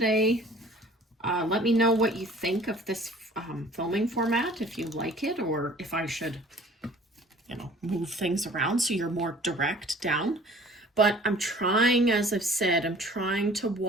Let me know what you think of this filming format, if you like it, or if I should, move things around so you're more direct down. But I'm trying, as I've said, I'm trying to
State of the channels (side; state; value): both; normal; correlation 0.50